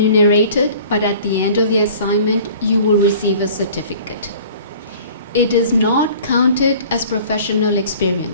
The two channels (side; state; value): both; inverted; correlation -0.47